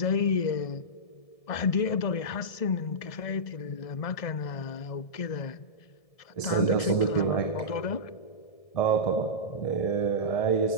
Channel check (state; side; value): late; right; 1.7 ms